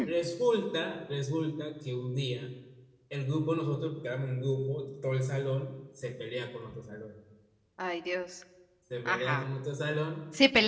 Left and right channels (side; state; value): both; identical; correlation 1.00